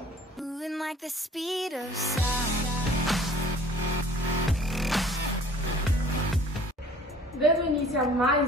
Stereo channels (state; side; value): normal; both; correlation 0.51